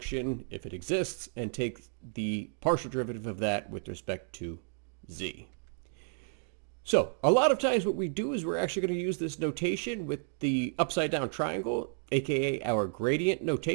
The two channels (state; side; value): silent; left; 56 dB below the other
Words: if it exists, and take the partial derivative of that with respect to z. So a lot of times what we do is we're actually going to use this notation with the upside down triangle, aka our gradient